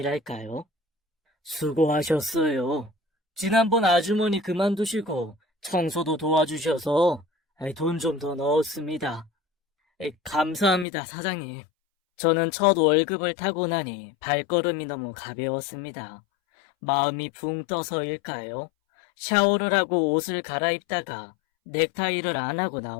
수고하셨어요. 지난번 아주머니 그만두시고 청소도 도와주셔서 돈 좀 더 넣었습니다. 감사합니다, 사장님. 저는 첫 월급을 타고 나니 발걸음이 너무 가벼웠습니다. 마음이 붕 떠서일까요? 샤워를 하고 옷을 갈아입다가 넥타이를 안 하고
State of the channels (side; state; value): right; drops out; at 10.9 s